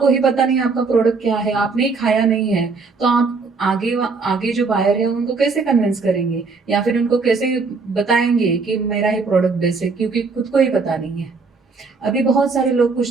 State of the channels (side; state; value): left; quieter; 4.4 dB